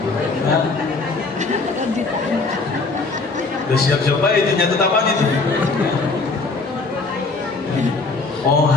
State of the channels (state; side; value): quieter; right; 3.8 dB